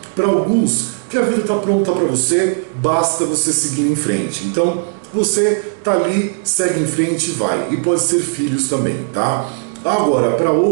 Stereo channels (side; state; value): left; silent; digital silence